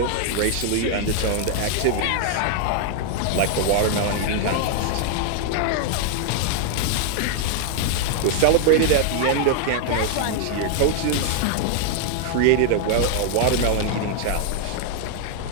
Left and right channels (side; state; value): both; different; correlation 0.00